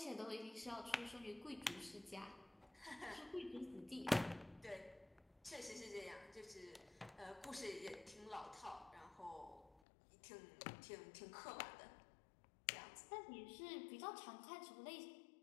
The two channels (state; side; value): drops out; right; at 9.8 s